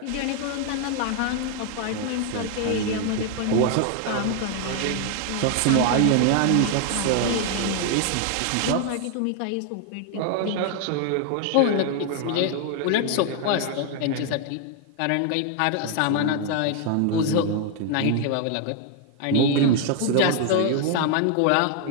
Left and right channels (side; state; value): both; different; correlation 0.00